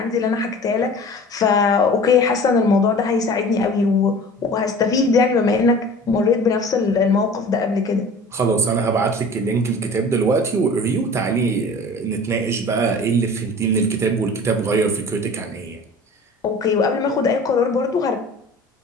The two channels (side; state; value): both; normal; correlation 0.42